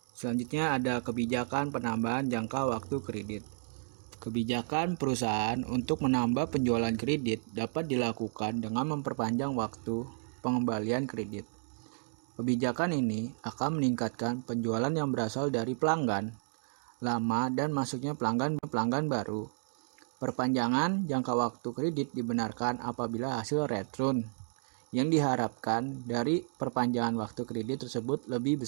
Selanjutnya ada kebijakan penambahan jangka waktu kredit. Kebijakan perusahaan untuk menambah penjualan kredit dapat dilakukan dengan memperpanjang waktu pengembalian kredit. Kebijakan ini akan meningkatkan penjualan yang berasal dari pelanggan lama dan masuknya pelanggan baru. Perpanjangan jangka waktu kredit dibenarkan apabila hasil return yang diharapkan dari perpanjangan waktu kredit tersebut lebih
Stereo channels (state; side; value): silent; left; digital silence